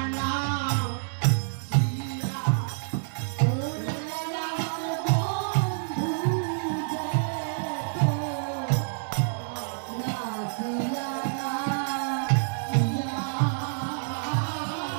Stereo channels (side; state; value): left; silent; digital silence